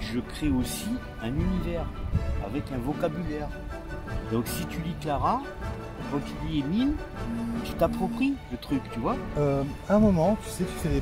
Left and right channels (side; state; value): both; identical; correlation 1.00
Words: je crée aussi un univers, avec un vocabulaire. Donc si tu lis Clara, quand tu lis Émile, tu t'appropries le truc, tu vois. À un moment, tu sais, tu fais des